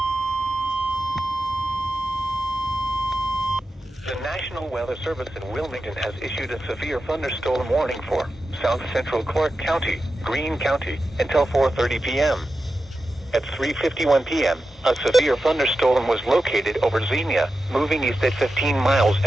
The National Weather Service in Wilmington has issued a severe thunderstorm warning for South Central Clark County, Greene County, until 4:30 p.m. At 3:51 p.m., a severe thunderstorm was located over Xenia, moving east at 15 miles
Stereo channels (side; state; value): both; normal; correlation 0.91